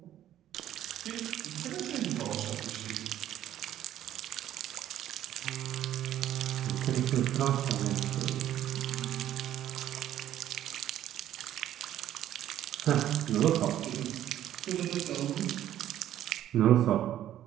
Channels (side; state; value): left; quieter; 12.0 dB